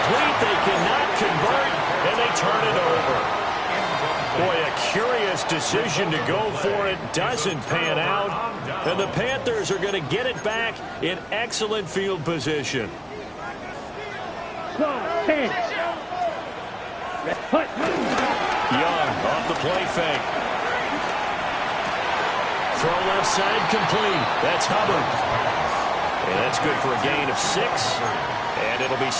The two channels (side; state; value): both; identical; correlation 1.00